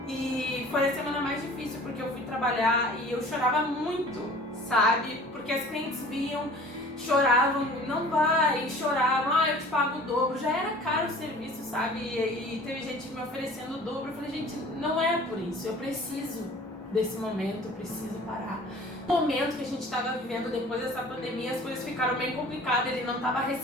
E foi a semana mais difícil, porque eu fui trabalhar e eu chorava muito, sabe? Porque as clientes vinham, choravam, não vai, choravam, eu te pago o dobro. Já era caro o serviço, sabe? E teve gente me oferecendo o dobro. Eu falei, gente, não é por isso, eu preciso desse momento, eu preciso parar. No momento que a gente estava vivendo depois dessa pandemia, as coisas ficaram bem complicadas, ele não estava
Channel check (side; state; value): both; normal; correlation 0.47